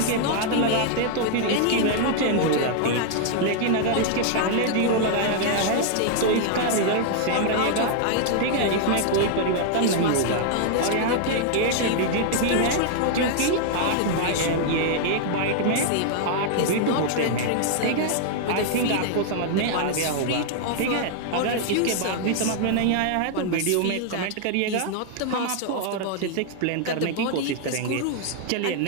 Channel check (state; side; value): different; both; correlation 0.00